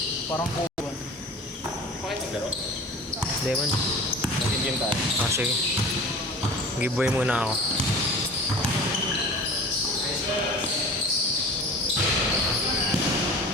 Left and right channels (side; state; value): both; normal; correlation 0.39